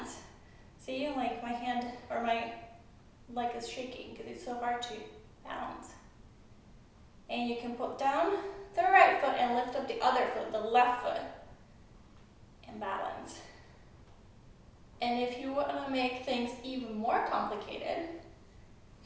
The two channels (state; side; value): identical; both; correlation 1.00